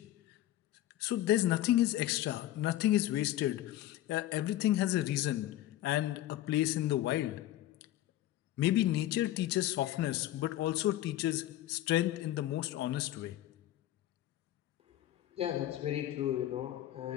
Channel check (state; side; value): quieter; right; 14.0 dB